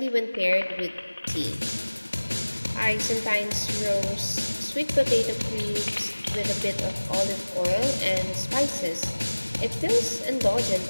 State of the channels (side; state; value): both; inverted; correlation -1.00